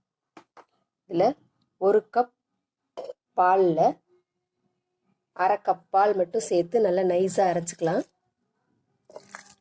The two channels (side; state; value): both; identical; correlation 1.00